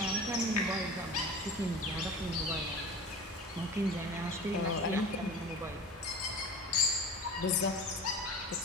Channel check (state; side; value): normal; both; correlation 0.35